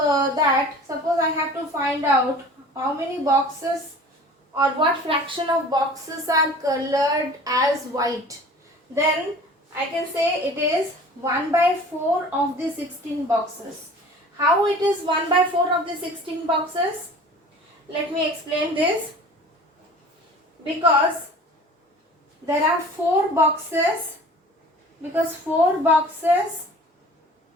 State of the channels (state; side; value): normal; both; correlation 0.44